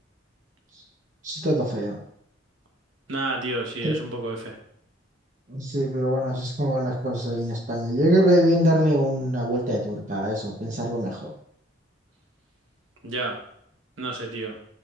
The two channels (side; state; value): both; normal; correlation 0.60